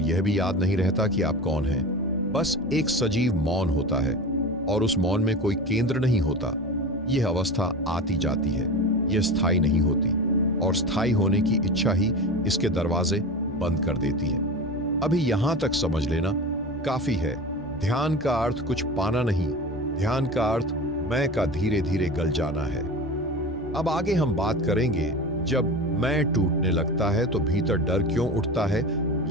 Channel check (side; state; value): both; normal; correlation 0.30